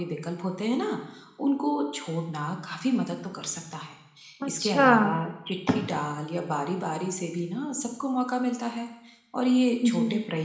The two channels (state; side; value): identical; both; correlation 1.00